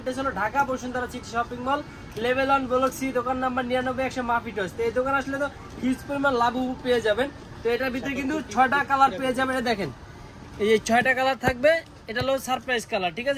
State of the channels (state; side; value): identical; both; correlation 1.00